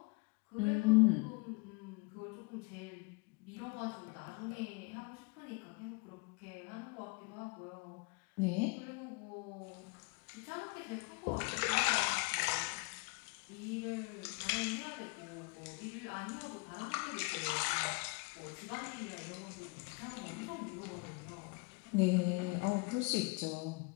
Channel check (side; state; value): right; quieter; 29.2 dB